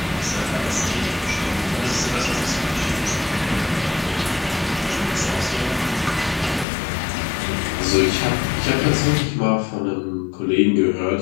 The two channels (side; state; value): right; drops out; at 6.7 s